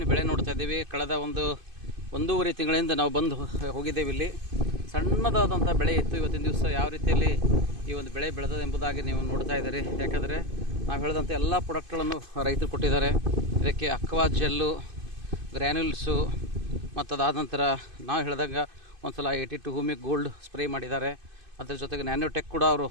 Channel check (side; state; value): left; late; 2.5 ms